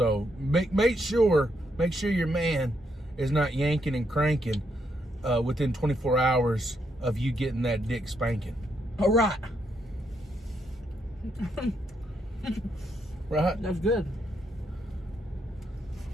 make sure your man is not yanking and cranking within 24 hours of you getting that dick spanking. All right. Right? That's good.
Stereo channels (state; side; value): normal; both; correlation 0.77